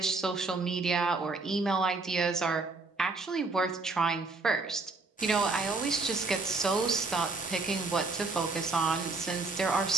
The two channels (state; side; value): quieter; left; 3.7 dB